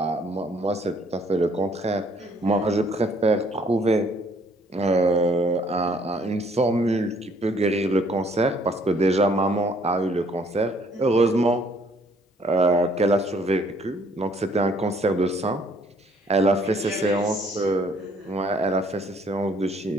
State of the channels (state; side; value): normal; both; correlation 0.63